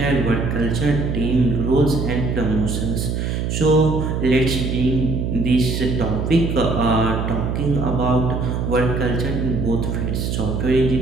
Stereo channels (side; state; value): right; noise; hum, 1 dB below the sound